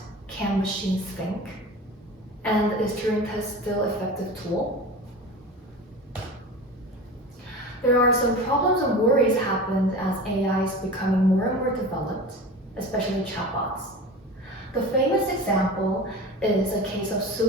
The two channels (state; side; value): normal; both; correlation 0.33